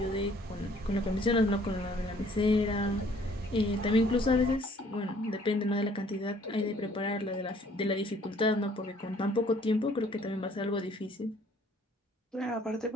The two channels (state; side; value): normal; both; correlation 0.59